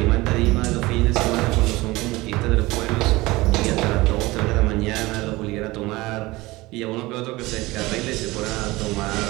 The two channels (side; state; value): left; quieter; 20.6 dB